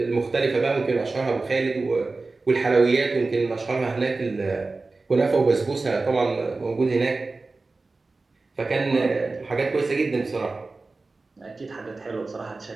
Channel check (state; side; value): quieter; left; 3.6 dB